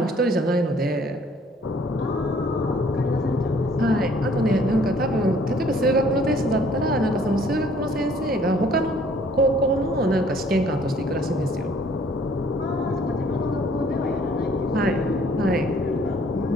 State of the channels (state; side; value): normal; both; correlation 0.59